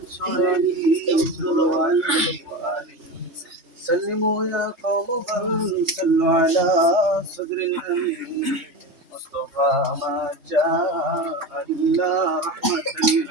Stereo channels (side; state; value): left; late; 3.3 ms